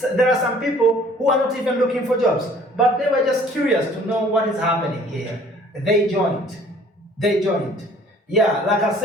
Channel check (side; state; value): both; normal; correlation 0.54